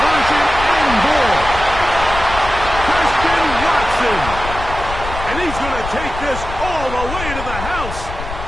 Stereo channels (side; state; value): left; noise; rumble, 9 dB below the sound